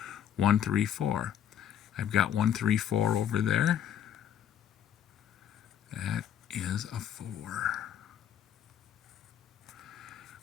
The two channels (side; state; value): right; quieter; 9.5 dB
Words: 1, 3, 4. I've got 1, 3, 4 over there. That is a 4.